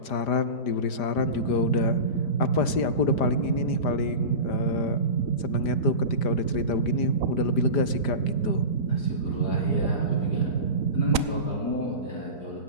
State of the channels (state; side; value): late; right; 5.0 ms